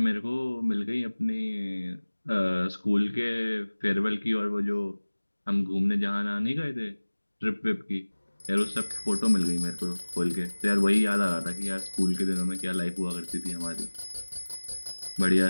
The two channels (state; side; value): inverted; both; correlation -1.00